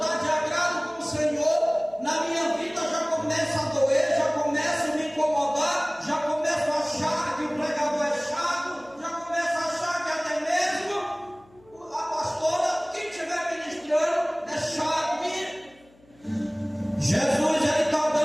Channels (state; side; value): noise; left; hum, 29 dB below the sound